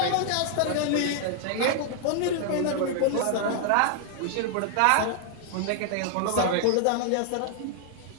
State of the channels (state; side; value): different; both; correlation 0.00